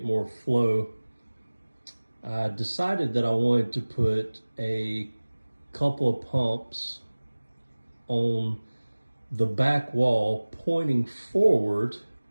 more flow, I decided that I wanted to put a couple of pumps on the back wall pointing forward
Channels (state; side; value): inverted; both; correlation -1.00